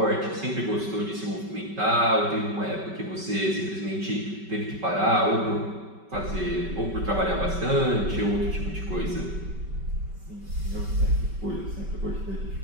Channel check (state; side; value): late; left; 5.2 ms